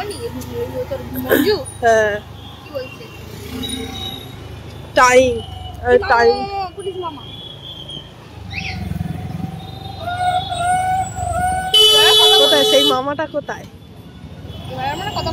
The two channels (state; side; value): identical; both; correlation 1.00